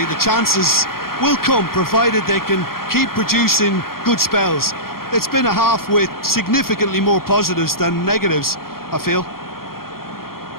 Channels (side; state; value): right; late; 0.92 ms